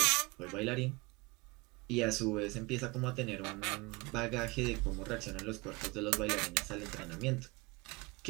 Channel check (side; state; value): left; quieter; 25.5 dB